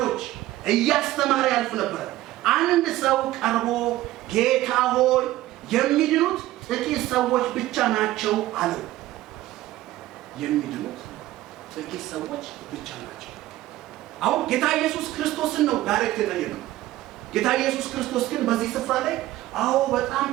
እያስተማረ ያልፍ ነበር። አንድ ሰው ቀርቦ ጌታ ሆይ የሚድኑት ጥቂት ሰዎች ብቻ ናቸው አለው። የሚድኑት ጥቂት ሰዎች ብቻ ናቸው። አሁን ጌታ ኢየሱስ ክርስቶስን ነው ዳይሬክት የጠየቀው። ጌታ ኢየሱስ ክርስቶስ ግን በዚህ ስፍራ ላይ አዎ በጣም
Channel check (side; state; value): left; quieter; 15.8 dB